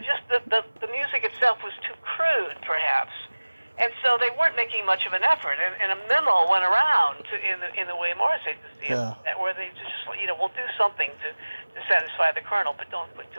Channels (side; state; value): both; inverted; correlation -1.00